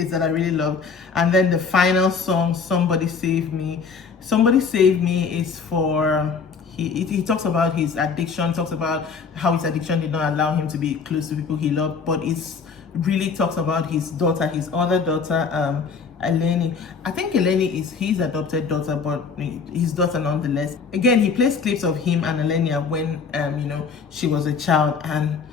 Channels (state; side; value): quieter; right; 5.4 dB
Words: that I really love. And then the final song, Somebody Save Me. Somebody Save Me is for, he talks about his addiction, talks about how his addiction did not allow him to be close to people he loved, but it's really talks about his daughter, his other daughter, Eleni. I think Eleni is his adopted daughter, but his daughter nonetheless. Again, he plays clips of him and Elenia when, you know, she was a child, and